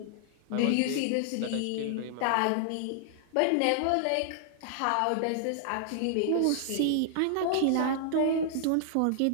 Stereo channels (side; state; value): both; different; correlation -0.01